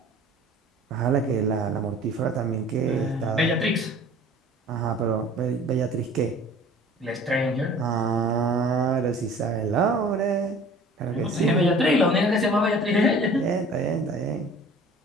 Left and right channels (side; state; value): both; normal; correlation 0.47